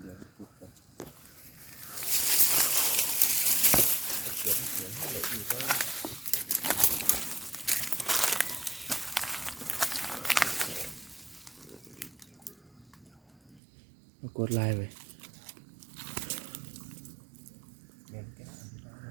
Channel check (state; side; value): drops out; left; at 13.6 s